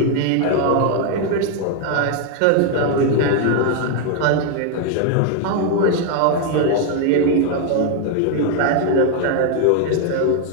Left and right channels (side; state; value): both; different; correlation 0.01